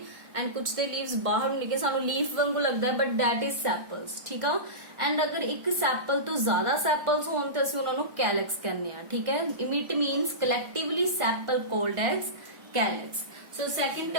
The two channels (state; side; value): late; left; 1.4 ms